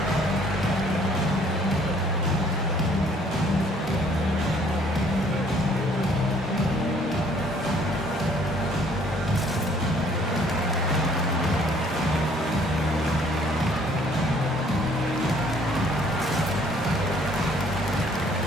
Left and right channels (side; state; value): both; normal; correlation 0.60